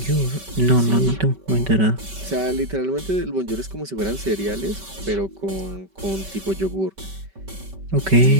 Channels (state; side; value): late; left; 5.2 ms